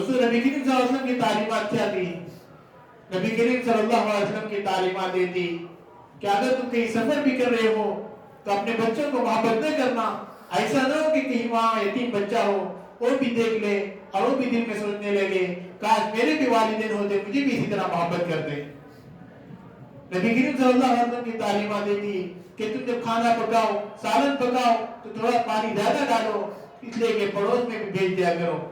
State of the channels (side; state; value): both; identical; correlation 1.00